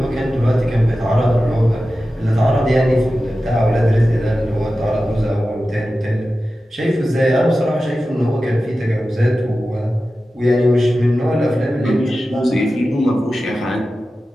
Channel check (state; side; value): normal; both; correlation 0.94